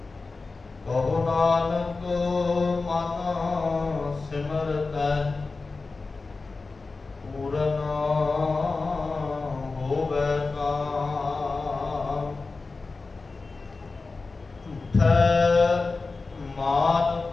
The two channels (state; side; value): quieter; right; 3.9 dB